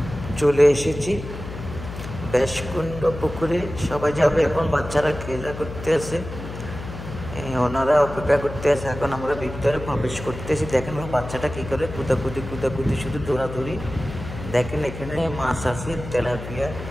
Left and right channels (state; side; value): noise; left; hum, 10 dB below the sound